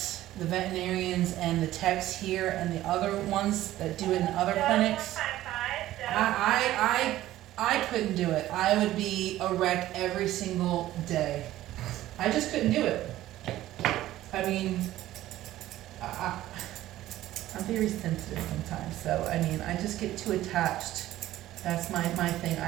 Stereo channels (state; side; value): quieter; left; 14.6 dB